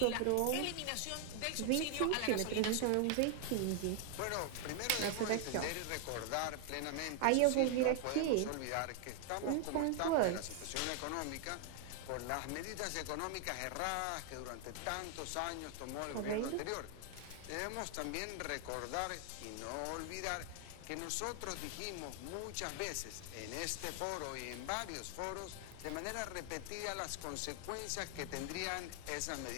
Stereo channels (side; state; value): both; different; correlation 0.00